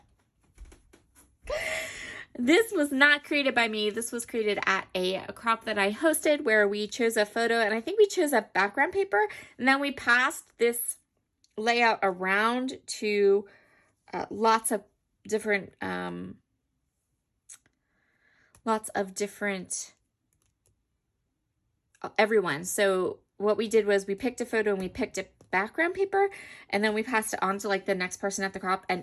This was not created by me. This was created at a crop that I hosted where we chose a photo, and I think we chose a background paper, and then we passed this layout around to lots of different everyone. So what we did was we picked a photo and we picked a background paper, and then we passed it on to like the next person at the crop,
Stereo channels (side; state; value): both; identical; correlation 1.00